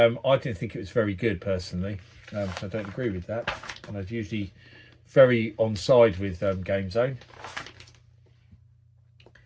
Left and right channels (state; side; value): identical; both; correlation 1.00